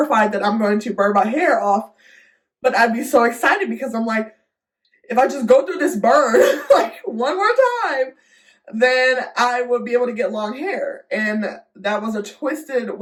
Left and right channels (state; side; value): identical; both; correlation 1.00